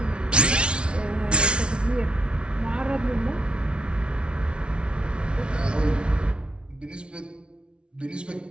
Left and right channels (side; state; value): left; late; 0.058 ms